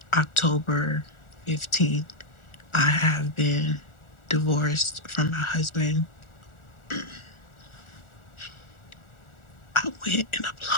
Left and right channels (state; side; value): late; right; 1.4 ms